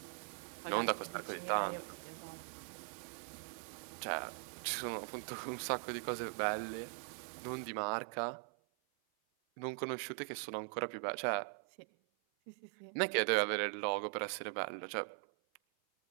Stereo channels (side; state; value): left; silent; 50 dB below the other